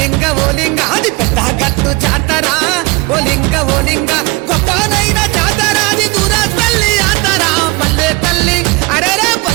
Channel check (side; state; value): left; quieter; 25.4 dB